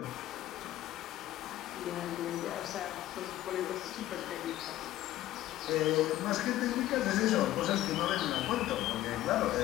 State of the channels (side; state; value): right; quieter; 14.4 dB